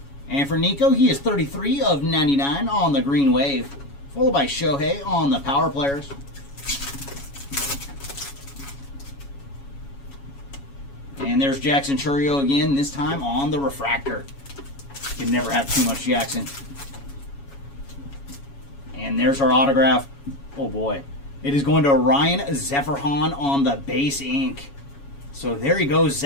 And for Nico, he is 33 of 99 on the Green Wave, followed by Shohei on the Power Players. And there's Jackson Chourio again, this time on the refractor. You can never have too much Jackson. And there's our autograph. Oh boy. It is going to Ryan Zephyrhan on the base ink. So there you go,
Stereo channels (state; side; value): late; right; 7.2 ms